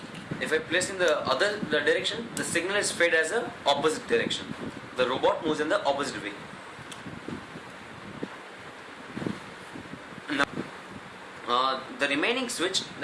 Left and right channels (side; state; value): both; identical; correlation 1.00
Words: If I press in the other direction, the signal is fed as a opposite direction. The robot moves in the opposite way. Now, the remaining switch,